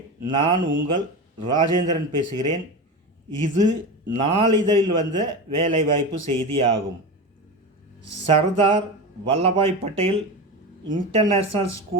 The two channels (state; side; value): normal; both; correlation 0.24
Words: நான் உங்கள் ராஜேந்திரன் பேசுகிறேன். இது நாளிதழில் வந்த வேலைவாய்ப்பு செய்தி ஆகும். Sardar Vallabhbhai Patel international